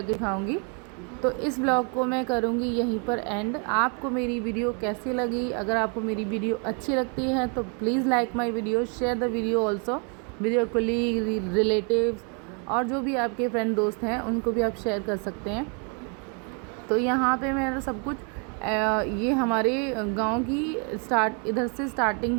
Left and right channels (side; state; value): left; quieter; 37.5 dB